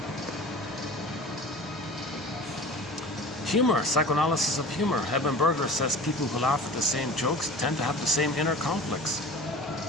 Humor, psychoanalysis of humor. Eben Berger says people who laugh at the same jokes tend to have the same inner conflicts.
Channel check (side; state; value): both; normal; correlation 0.39